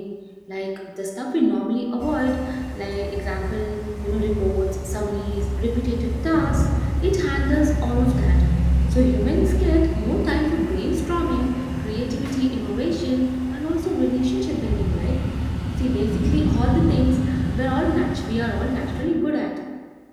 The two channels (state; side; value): identical; both; correlation 1.00